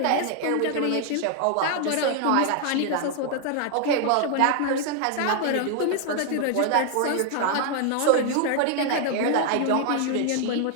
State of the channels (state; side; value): different; both; correlation 0.00